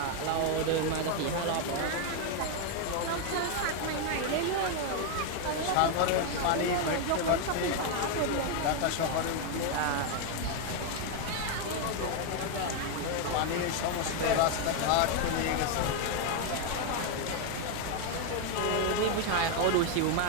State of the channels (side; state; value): both; different; correlation 0.01